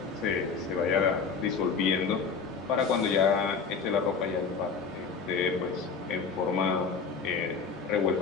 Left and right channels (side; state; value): right; quieter; 5.3 dB